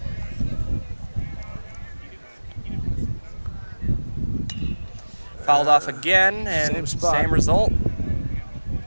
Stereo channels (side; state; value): both; inverted; correlation -1.00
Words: Fouled off again, and Same spot. same result.